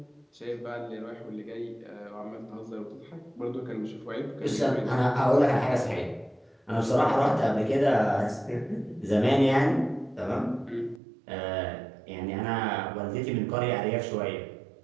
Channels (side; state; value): left; drops out; at 11.0 s